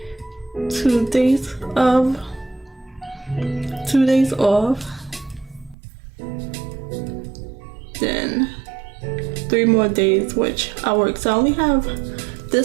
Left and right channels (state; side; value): drops out; left; at 5.8 s